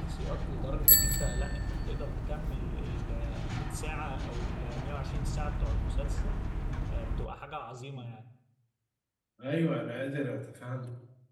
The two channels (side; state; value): both; identical; correlation 1.00